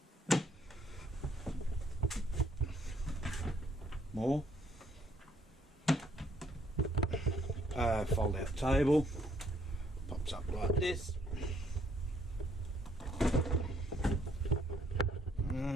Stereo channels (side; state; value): both; normal; correlation 0.68